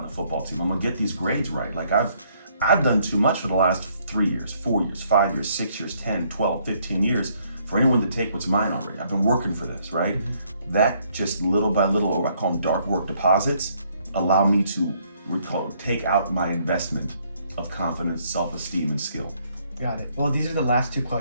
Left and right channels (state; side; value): inverted; both; correlation -0.68